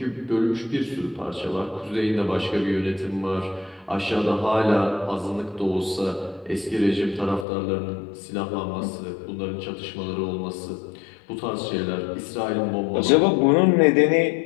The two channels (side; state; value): right; drops out; at 7.5 s